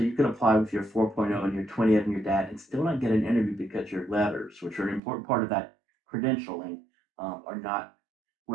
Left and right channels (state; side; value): drops out; left; at 5.0 s